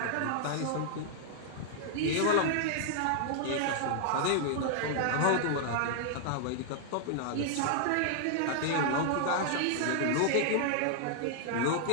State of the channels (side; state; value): both; different; correlation -0.01